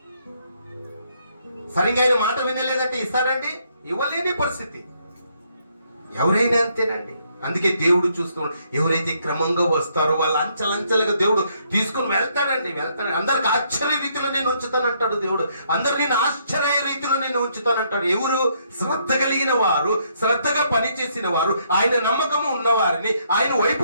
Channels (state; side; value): inverted; both; correlation -0.71